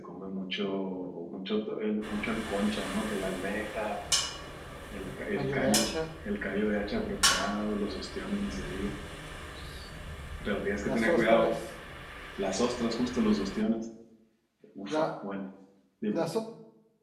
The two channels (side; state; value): both; identical; correlation 1.00